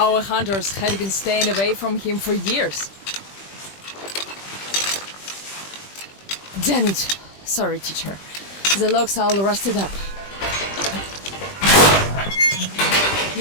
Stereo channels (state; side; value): late; right; 20 ms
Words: hunters had been staying away from him for years. Damn it. Sorry, teacher. The lock's all rusted up.